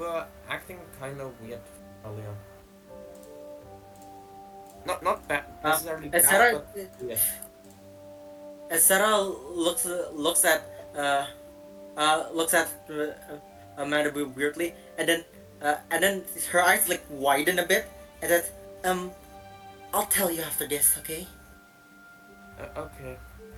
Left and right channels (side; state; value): both; identical; correlation 1.00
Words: acting kind of weird earlier. Not bad necessarily As bad, Sarah, but weird. as Sarah looks at Manabu weirdly, and then her eyes like widen a bit, and then I'll tell you after this, okay? Okay.